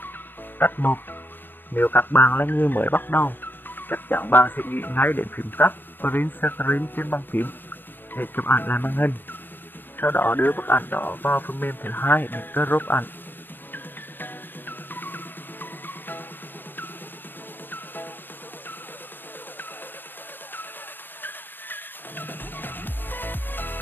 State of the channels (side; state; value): right; late; 0.094 ms